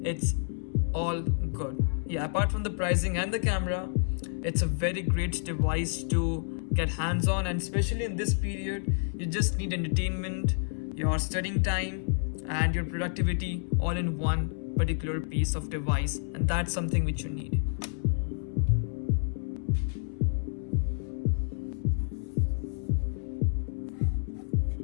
it's all good. Yeah, apart from the pricing and the camera, it's a very great device to get hands on, and especially in this period you just need entertainment, your studying time, and your productivity all in one particular piece of device, and that's something which you need.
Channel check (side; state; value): right; silent; 58 dB below the other